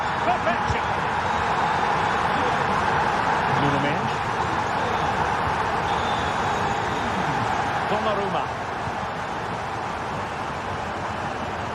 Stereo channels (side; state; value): both; identical; correlation 1.00